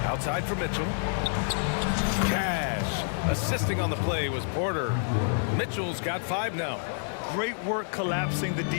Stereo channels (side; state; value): right; silent; 59 dB below the other